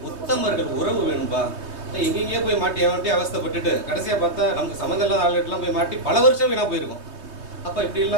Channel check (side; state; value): left; late; 3.2 ms